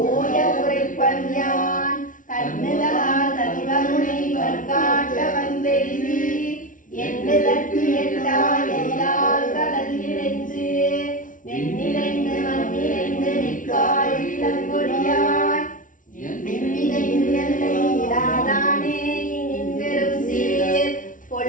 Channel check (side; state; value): right; late; 0.38 ms